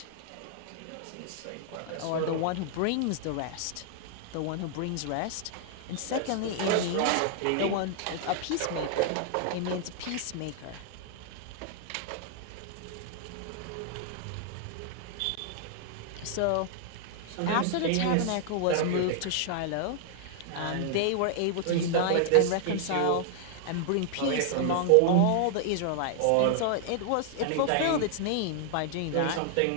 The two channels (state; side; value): different; both; correlation 0.00